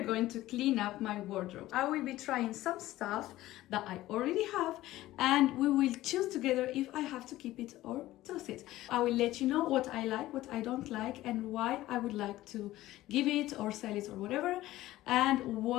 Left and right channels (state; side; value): quieter; right; 15.9 dB